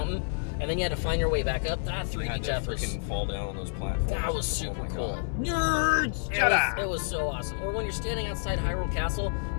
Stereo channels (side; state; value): right; silent; digital silence